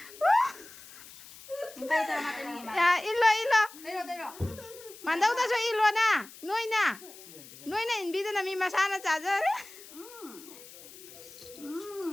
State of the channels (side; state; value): left; noise; hiss, 18 dB below the sound